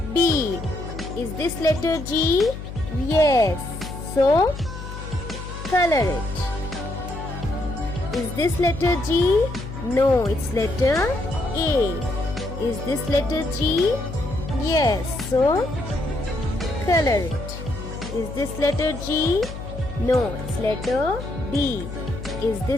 B. Is this letter G? Yes. So, color it. Is this letter G? No, it's letter A. Is this letter G? Yes. So, color it. Is this letter G? No, it's letter B. Is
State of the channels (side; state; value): left; noise; hum, 10 dB below the sound